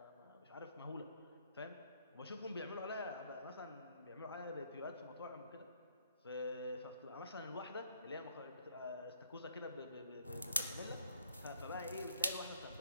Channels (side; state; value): both; inverted; correlation -0.65